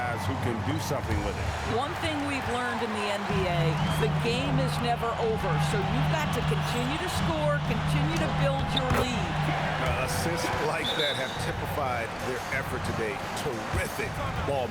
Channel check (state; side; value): identical; both; correlation 1.00